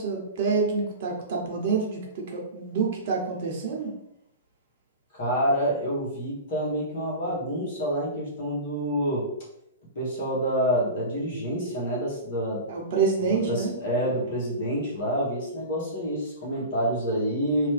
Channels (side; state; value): both; inverted; correlation -0.31